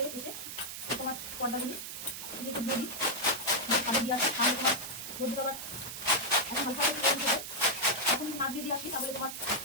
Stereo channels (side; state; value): right; noise; hiss, 8 dB below the sound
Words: এসে তোমার পর্দাগুলি একটু দিয়ে দিই, ছাদে দিয়ে আসি, তাহলে তোমার রোদ্দুর আবার এখন হালকা করে গরম হবে। এখন ভাত দিয়ে দিয়ে আসি, তাহলে তোমার